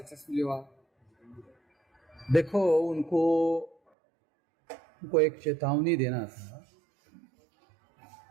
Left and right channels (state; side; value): drops out; left; at 3.8 s